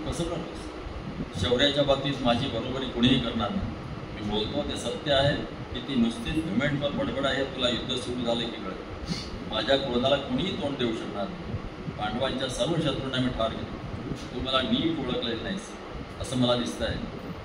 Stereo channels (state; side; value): identical; both; correlation 1.00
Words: कसं करतोस. शौर्याच्या बाबतीत माझी बरोबरी कुणीही करणार नाही. मी बोलतो ते सत्य आहे की ती नुसतीच घुमेंटवर बडबड आहे. तुला युद्ध सुरू झाले की कळेल. माझ्या क्रोधाला कुणीही तोंड देऊ शकणार नाही. पांडवांच्या सर्व शत्रूंना मी ठार केले. तू मला नीट ओळखलेलं नाहीस असं मला दिसतं आहे.